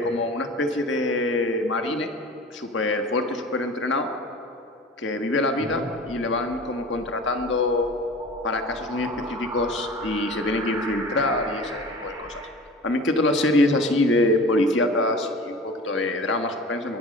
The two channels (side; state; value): both; normal; correlation 0.39